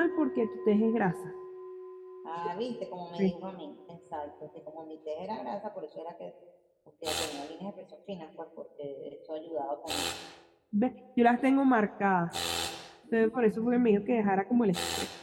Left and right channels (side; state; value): both; identical; correlation 1.00